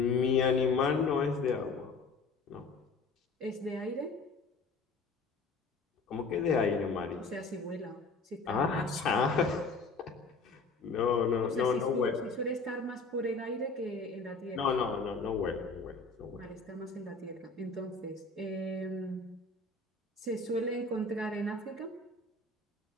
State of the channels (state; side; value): quieter; right; 3.9 dB